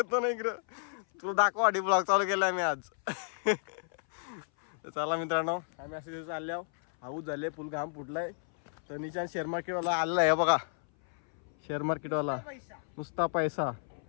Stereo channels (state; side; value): silent; right; 56 dB below the other